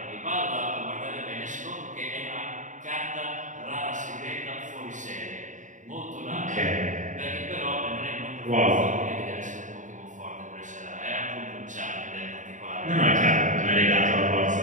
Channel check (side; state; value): left; late; 0.36 ms